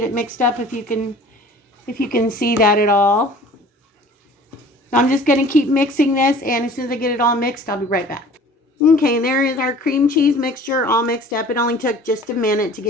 it mixed up if you can see that at all. So I'm just going to keep mixing this, and as soon as I get it all mixed, I'll be right back. Okay, there is our cream cheese mixture all mixed up. It only took just a minute to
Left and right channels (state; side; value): normal; both; correlation 0.47